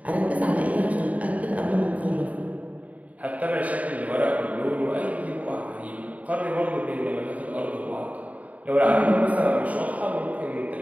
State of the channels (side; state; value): left; late; 0.070 ms